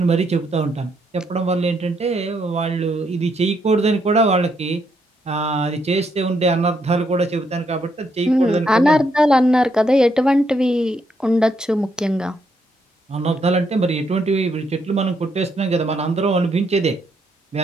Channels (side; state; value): both; normal; correlation 0.75